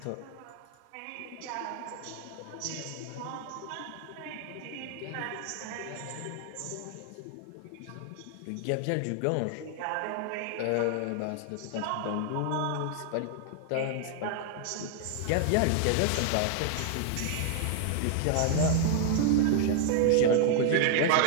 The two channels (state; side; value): different; both; correlation 0.00